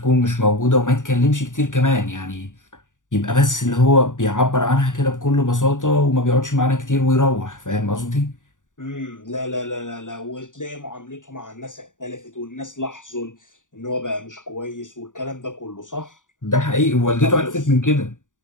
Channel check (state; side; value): late; right; 0.87 ms